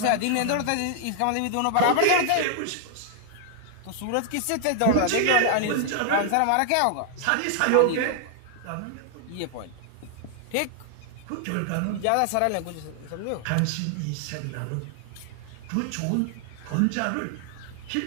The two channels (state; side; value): different; both; correlation 0.00